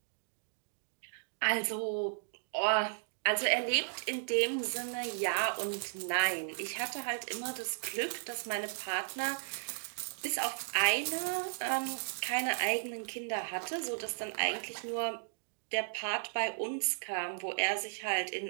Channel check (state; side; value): silent; left; digital silence